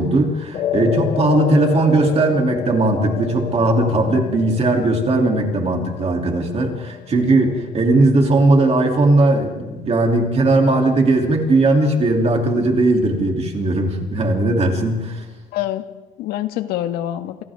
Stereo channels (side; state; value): both; normal; correlation 0.68